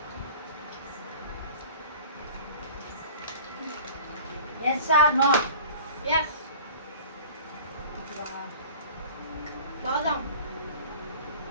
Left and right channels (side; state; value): both; inverted; correlation -0.43